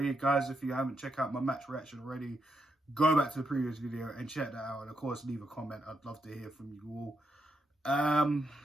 Guys, if you haven't checked out my match reaction already, go back to the previous video and check that out. And of course, leave a comment. I'd love to hear from you all.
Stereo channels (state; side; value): normal; both; correlation 0.81